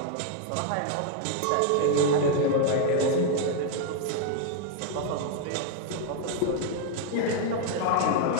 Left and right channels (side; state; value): both; different; correlation 0.00